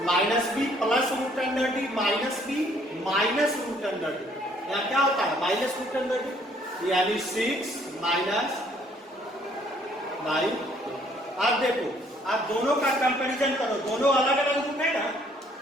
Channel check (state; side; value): normal; both; correlation 0.63